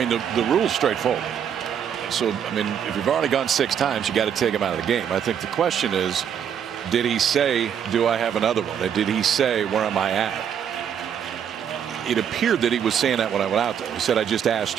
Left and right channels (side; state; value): left; quieter; 8.5 dB